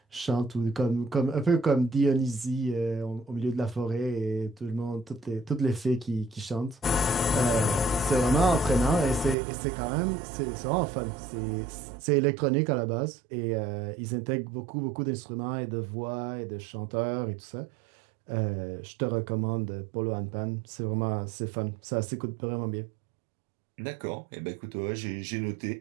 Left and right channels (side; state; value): left; drops out; at 9.3 s